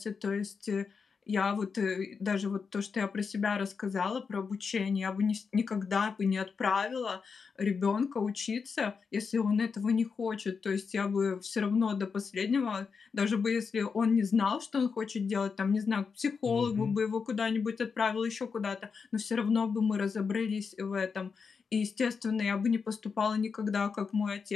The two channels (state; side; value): quieter; right; 5.5 dB